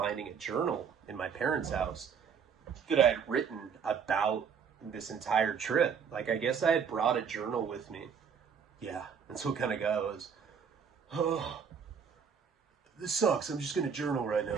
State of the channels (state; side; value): quieter; left; 6.8 dB